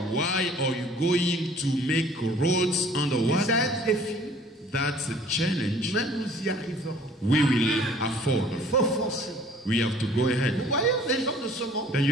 Why are you going to make roads C'est underwater? un défi, That's a challenge mais nous y arriverons. we will afford. Il faut foncer. We have to go Vous ahead. voyez les gens de ce monde, Then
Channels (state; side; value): normal; both; correlation 0.53